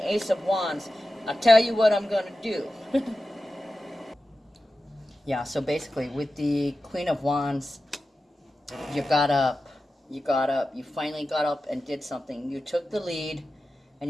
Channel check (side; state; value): both; normal; correlation 0.93